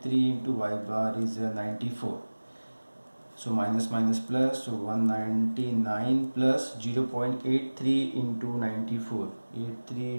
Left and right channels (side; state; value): both; inverted; correlation -1.00